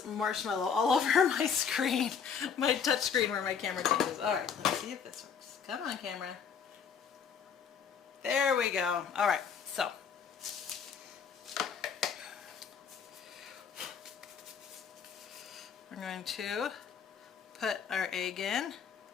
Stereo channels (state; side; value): quieter; right; 6.9 dB